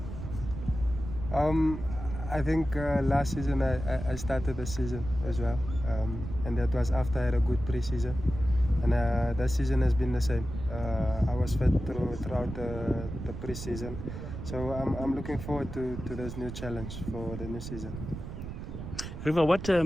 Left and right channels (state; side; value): noise; right; rumble, 8 dB below the sound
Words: I think last season I started the season as well, and that was after I had a good pre-season, and that season has been the same. I was fit throughout the pre-season, so I'm looking forward to this new challenge for the new season. Riva, what